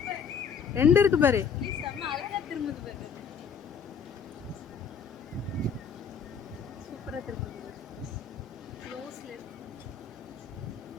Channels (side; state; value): right; quieter; 6.4 dB